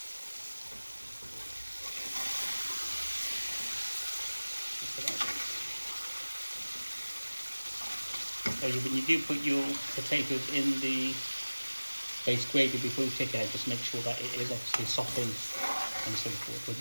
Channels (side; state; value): both; inverted; correlation -1.00